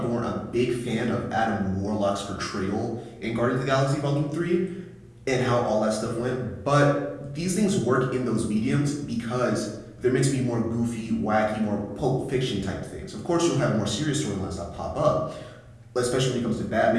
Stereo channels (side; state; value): both; identical; correlation 1.00